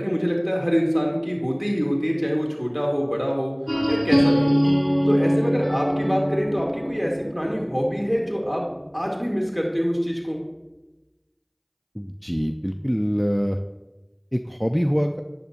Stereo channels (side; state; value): both; identical; correlation 1.00